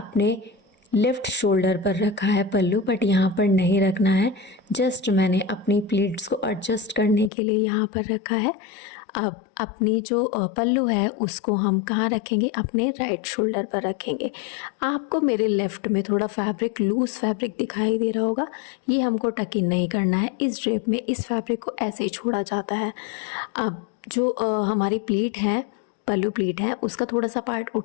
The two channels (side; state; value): right; drops out; at 7.3 s